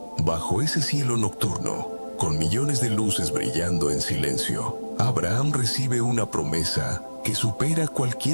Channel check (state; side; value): inverted; both; correlation -1.00